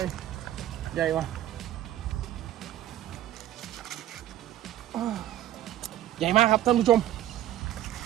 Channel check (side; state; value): left; quieter; 13.3 dB